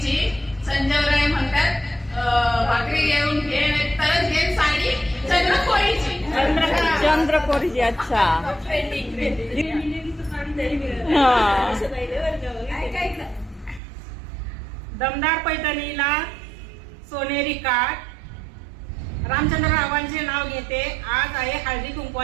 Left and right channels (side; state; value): left; drops out; at 13.8 s